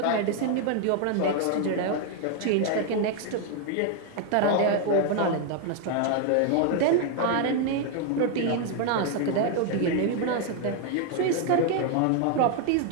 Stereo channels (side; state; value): both; different; correlation 0.00